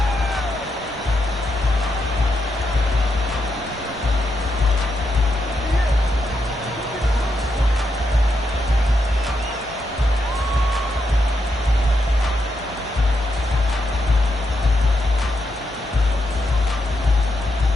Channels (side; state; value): both; normal; correlation 0.83